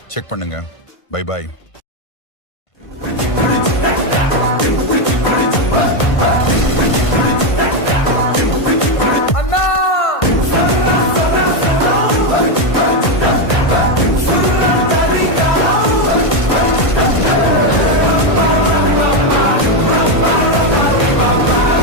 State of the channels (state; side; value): late; right; 1.5 ms